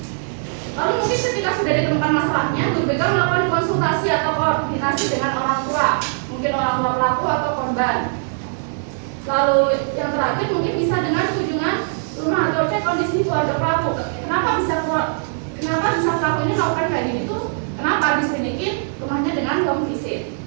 Lalu mungkin ketika sudah ditemukan masalahnya, guru BK melakukan konsultasi atau koordinasi dengan orang tua, mungkin orang tua pelaku atau korban. Lalu yang terakhir mungkin bisa dengan kunjungan rumah atau cek kondisi keluarga pelaku. Kenapa bisa pelaku ini melakukan kayak gini tuh? Kenapa diselidikin rumahnya dengan home visit?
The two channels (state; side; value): silent; left; 62 dB below the other